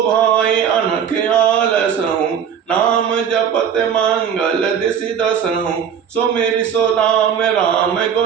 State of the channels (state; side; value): quieter; left; 8.0 dB